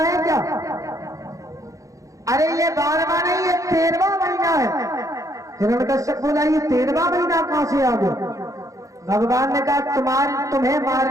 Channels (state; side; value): late; left; 0.16 ms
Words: क्या? अरे ये 12वां नहीं, ये 13वां महीना है। हिरण्यकश्यप बोला ये 13वां महीना कहां से आ गया? भगवान ने कहा तुम्हें